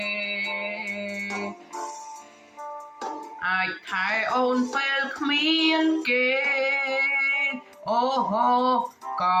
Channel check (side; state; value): both; identical; correlation 1.00